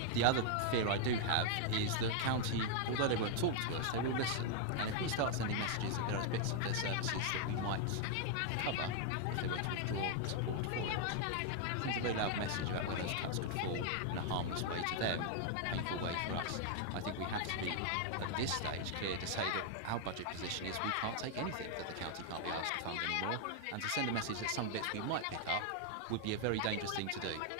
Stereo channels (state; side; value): different; both; correlation 0.00